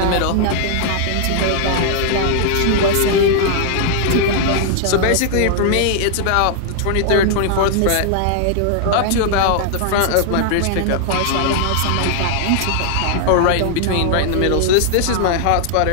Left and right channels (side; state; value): both; different; correlation -0.01